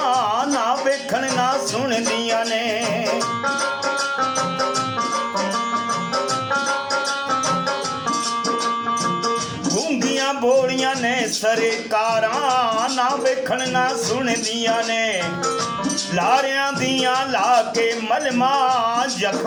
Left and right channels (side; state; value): both; identical; correlation 1.00